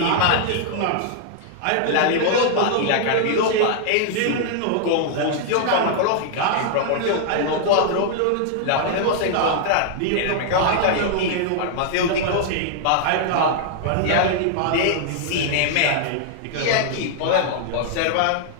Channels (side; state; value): both; different; correlation -0.01